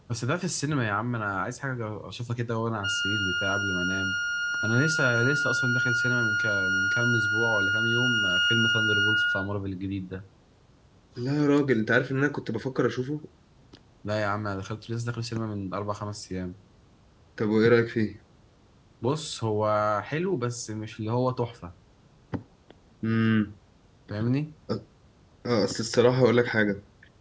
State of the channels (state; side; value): identical; both; correlation 1.00